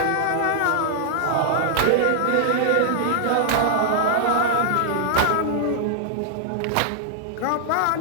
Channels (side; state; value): both; different; correlation -0.01